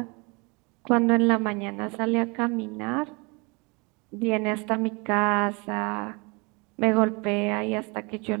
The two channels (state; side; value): quieter; left; 29.0 dB